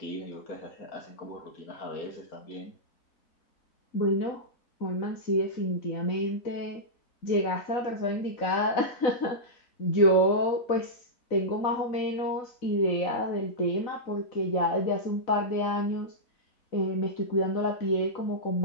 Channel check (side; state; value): right; late; 4.0 ms